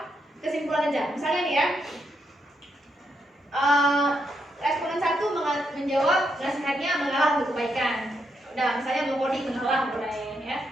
kesimpulan aja. Misalnya nih ya, responden 1 menjawab nasihatnya mengalah untuk kebaikan. Udah, misalnya mengcoding mengalah boleh ya.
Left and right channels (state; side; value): normal; both; correlation 0.80